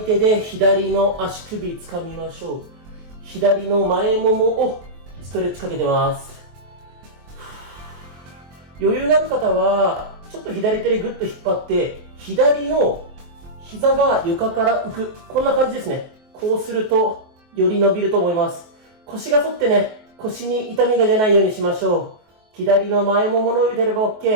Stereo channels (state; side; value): late; left; 23 ms